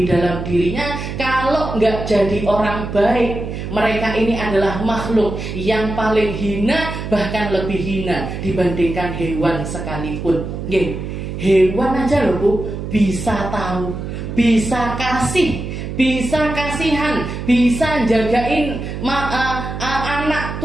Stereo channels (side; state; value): right; noise; hum, 6 dB below the sound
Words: dalam dirinya, kalau nggak jadi orang baik, mereka ini adalah makhluk yang paling hina, bahkan lebih hina dibandingkan hewan sekalipun. Hewan aja loh Bu, bisa tahu, bisa kasih, bisa kasihan, bisa jagain anak